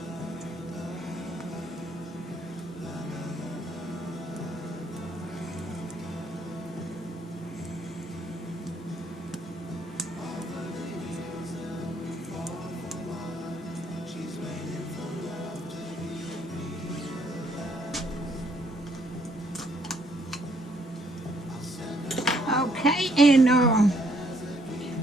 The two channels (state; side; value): normal; both; correlation 0.68